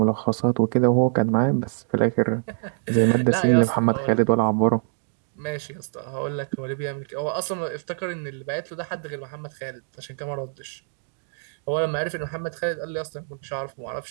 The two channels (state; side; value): silent; left; digital silence